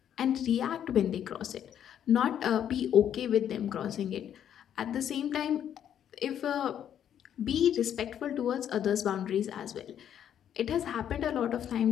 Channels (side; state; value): right; quieter; 9.7 dB